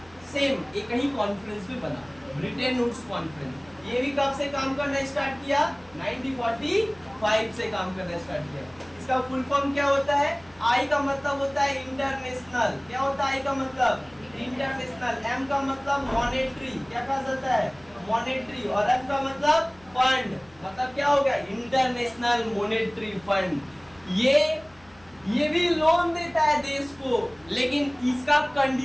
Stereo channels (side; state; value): left; noise; hum, 28 dB below the sound